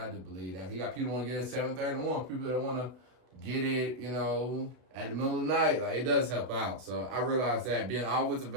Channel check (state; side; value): late; left; 32 ms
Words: do believe that. You got people who want to get it at 7:30 in the morning, people that want to get it, at the middle of the night. Like, it does help out. So I realized that being always